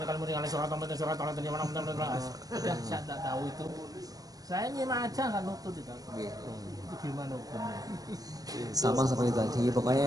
kalau mau dengan surat di mana udah saya tak tahu itu. Saya nyimak aja nggak nutut itu. Itu gimana hukumnya? Sama seperti tadi,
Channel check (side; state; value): left; late; 0.18 ms